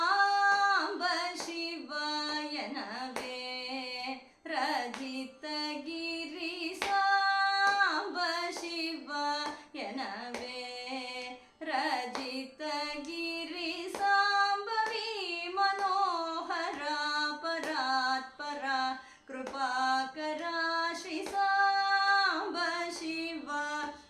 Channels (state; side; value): identical; both; correlation 1.00